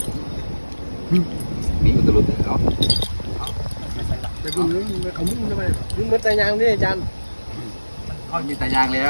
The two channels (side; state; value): both; inverted; correlation -1.00